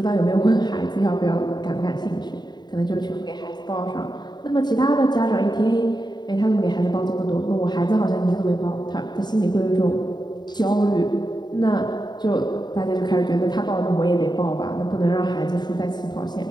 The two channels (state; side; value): late; right; 0.21 ms